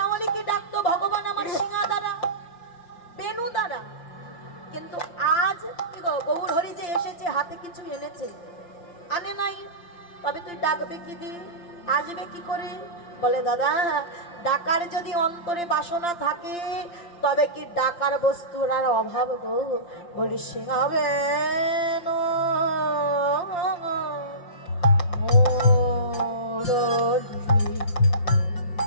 ডাকতো ভগবান আমার সিংহা দ্বারা, বেনু দ্বারা। কিন্তু আজ কি গো, গৌর হরি যে এসেছে হাতে কিছু এনেছে, আনে নাই, তবে তুই ডাকবে কি দিয়ে, আসবে কি করে? বলে দাদা, ডাকার যদি অন্তরে বাসনা থাকে, তবে কি ডাকার বস্তুর আর অভাব গো? বলি সিংহাবে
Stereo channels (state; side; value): late; right; 5.8 ms